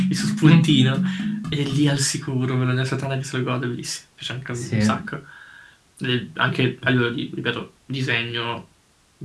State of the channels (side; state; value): both; identical; correlation 1.00